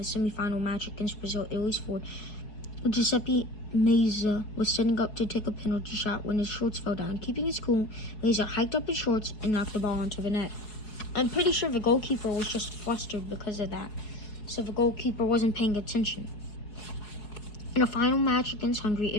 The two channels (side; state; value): right; late; 4.7 ms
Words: semifinal match against Brazil, Italy's forward Giuseppe Meazza was setting up to take a penalty shot when his shorts fell down. Keeping his cool, Meazza hiked up his shorts and knocked the ball onto the net. I'm pretty sure the goalkeeper was just flustered because of that, so the goalkeeper wasn't paying attention. In a final match against Hungary,